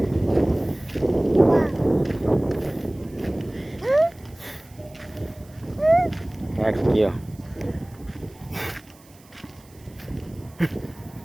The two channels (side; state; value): right; noise; hiss, 27 dB below the sound